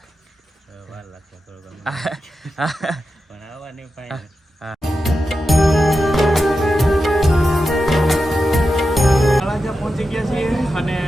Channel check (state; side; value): normal; both; correlation 0.90